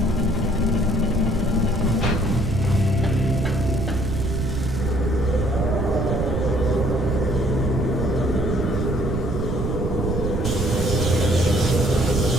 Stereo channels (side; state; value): right; noise; rumble, 1 dB below the sound